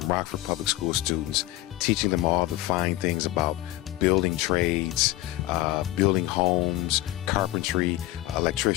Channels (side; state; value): right; quieter; 16.6 dB